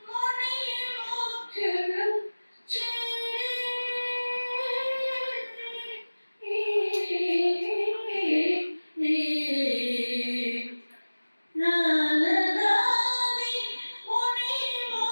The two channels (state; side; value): inverted; both; correlation -1.00